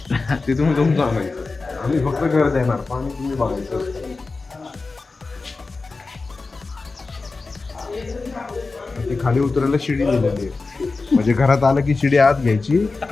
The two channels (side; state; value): right; quieter; 3.9 dB